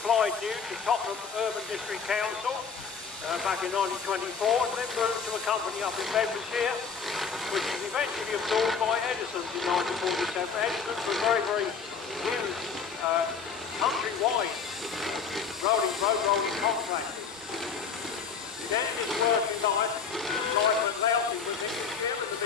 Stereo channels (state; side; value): quieter; right; 5.8 dB